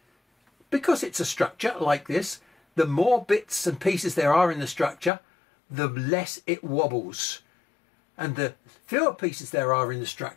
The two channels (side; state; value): right; drops out; at 5.1 s